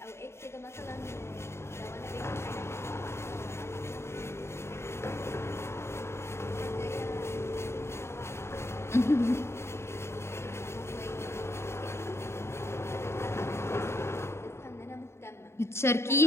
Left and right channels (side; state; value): right; late; 0.13 ms